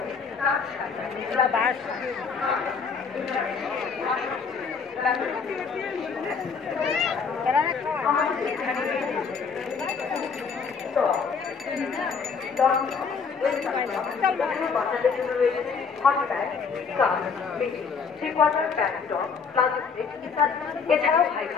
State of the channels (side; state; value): right; quieter; 5.6 dB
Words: তাঁত শাড়ি, আমাদের এখানে বাচ্চাদের জন্য রয়েছে হট প্যান্ট, স্কার্ট, পেটি, three quarter pant, top, palazzo set ইত্যাদি। এছাড়াও ভাই